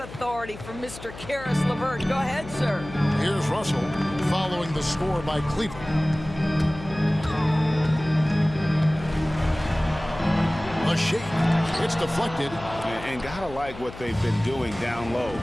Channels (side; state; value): left; noise; hum, 14 dB below the sound